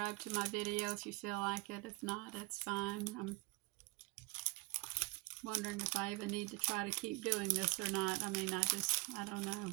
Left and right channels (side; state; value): left; quieter; 25.1 dB